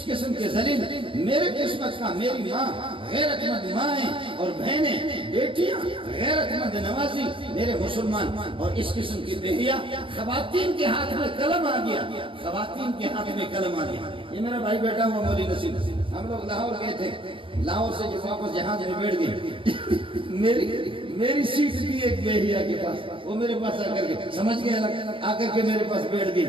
قسم کے ذلیل میرے قسمت کا، میری ماں غیرت مند مائیں اور بہنیں، بیٹیاں غیرت مند نوازی، میرے مسلمان، اور اس قسم کی بہیا خواتین کے ہاتھ میں قلم آ گیا، خواتین کے ہاتھ میں قلم آ گیا. یہ میرا بھائی بیٹا ہوا مولی نصیب، ہم لوگ لاہور گئے تھے. لاہور سے جب واپس جہاز میں بیٹھ گئے، میری سیٹ تھی ایک بہیا کے پاس، وہ میرے پاس آ کر کے سمجھ گیا، آ کر کے میرے پاس بیٹھ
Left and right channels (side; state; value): left; late; 0.25 ms